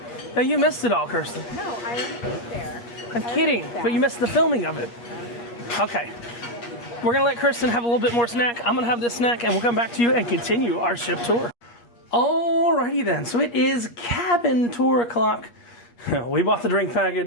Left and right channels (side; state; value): right; late; 8.5 ms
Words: Yeah, you missed it all, Kirsten. No, I already ate there. I'm kidding, but you missed the filming of it. Okay. We're gonna let Kirsten have a little bit more snack. I'm gonna have this snack and we'll come back to you and continue our ship tour. Alrighty then, so it is cabin tour o'clock. We bought the drink